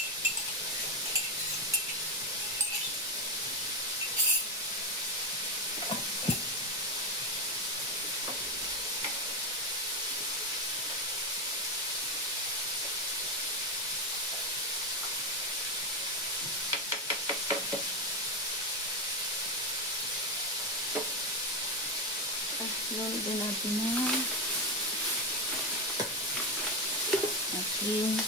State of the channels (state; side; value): normal; both; correlation 0.09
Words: Lulog din natin na ating